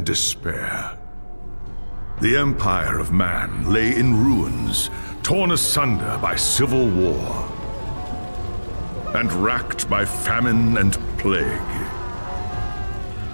despair. The empire of man lay in ruins, torn asunder by civil war, and racked by famine and plague.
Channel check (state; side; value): inverted; both; correlation -1.00